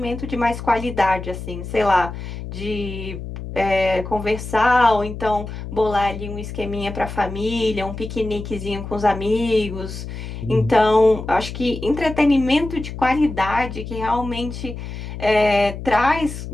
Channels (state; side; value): noise; left; hum, 9 dB below the sound